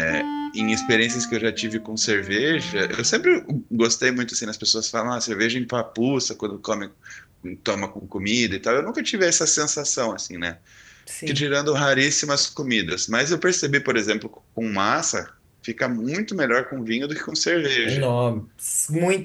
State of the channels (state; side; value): identical; both; correlation 1.00